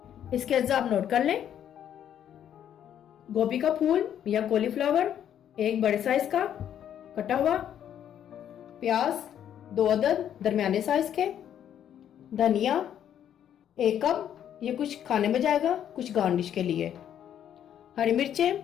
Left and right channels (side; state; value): right; quieter; 9.9 dB